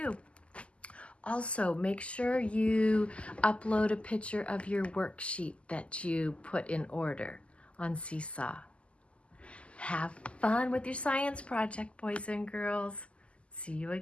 Also, make sure you upload a picture of your worksheet that you put in order on Seesaw. Have fun with your science project, boys and girls. See you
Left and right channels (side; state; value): right; late; 0.056 ms